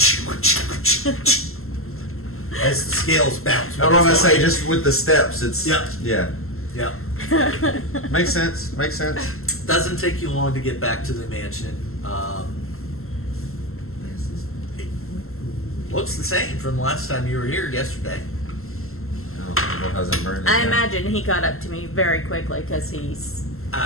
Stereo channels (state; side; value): late; right; 0.62 ms